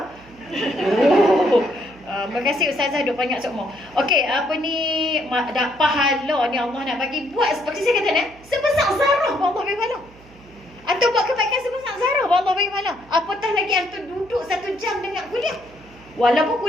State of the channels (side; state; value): right; noise; hum, 25 dB below the sound